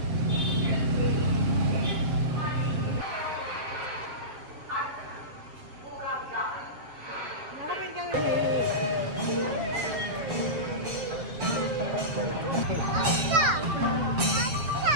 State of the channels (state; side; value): late; left; 7.5 ms